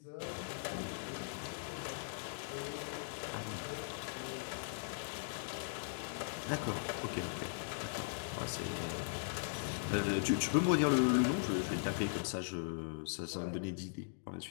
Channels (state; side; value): silent; right; digital silence